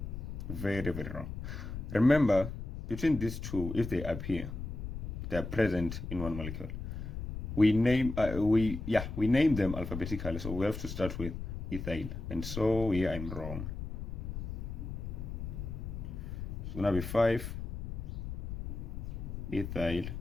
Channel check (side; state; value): left; noise; rumble, 6 dB below the sound